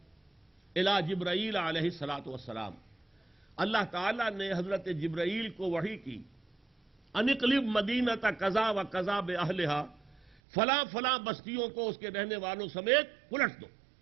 الی جبرائیل علیہ الصلوۃ والسلام، اللہ تعالیٰ نے حضرت جبرائیل کو وحی کی، ان اقلب مدینۃ کذا و کذا باہلھا، فلاں فلاں بستیوں کو اس کے رہنے والوں سمیت پلٹ دو۔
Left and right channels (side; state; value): left; drops out; at 10.4 s